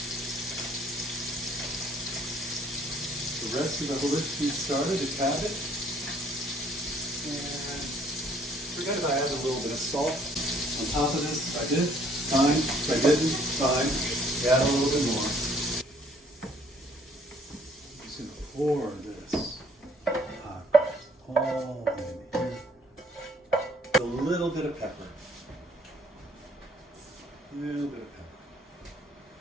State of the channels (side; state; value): both; normal; correlation 0.61